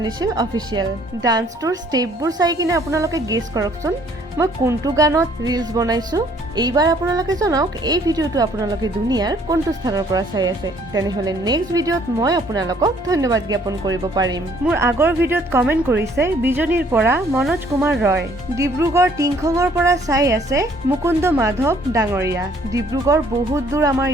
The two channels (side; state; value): both; normal; correlation 0.61